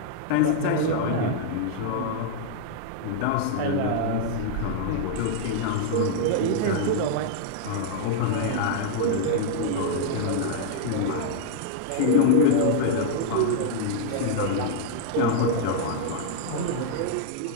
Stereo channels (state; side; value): different; both; correlation -0.01